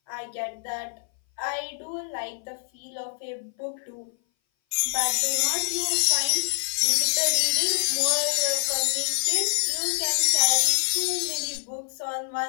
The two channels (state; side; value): silent; right; 59 dB below the other